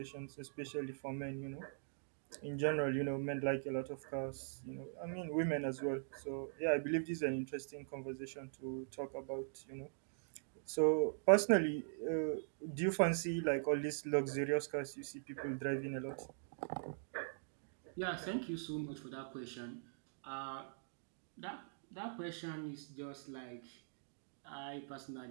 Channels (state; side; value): silent; left; digital silence